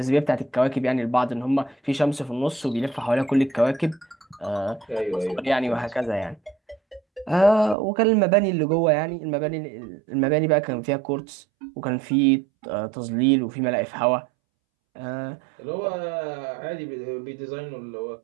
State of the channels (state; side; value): drops out; left; at 7.8 s